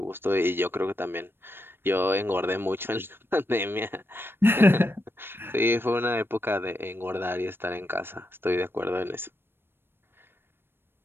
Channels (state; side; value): late; left; 0.10 ms